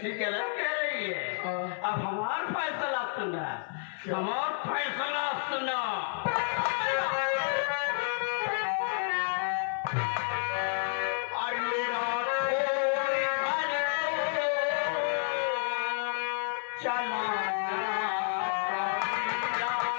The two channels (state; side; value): silent; right; 58 dB below the other